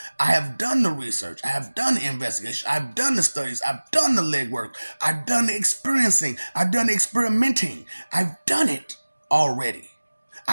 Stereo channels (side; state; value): both; inverted; correlation -1.00